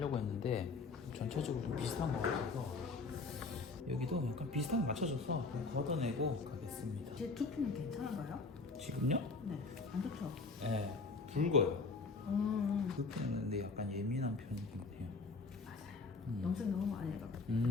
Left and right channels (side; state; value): right; quieter; 4.0 dB